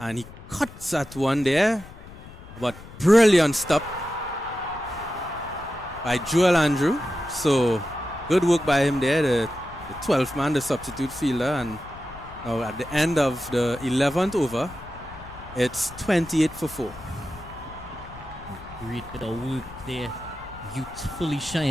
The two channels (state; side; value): noise; left; rumble, 17 dB below the sound